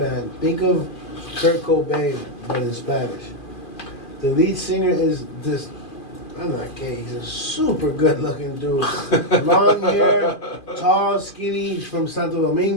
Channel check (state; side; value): late; right; 2.4 ms